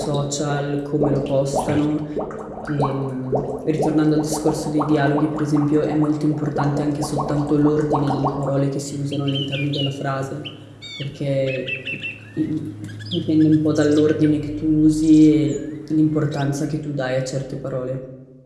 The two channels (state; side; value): identical; both; correlation 1.00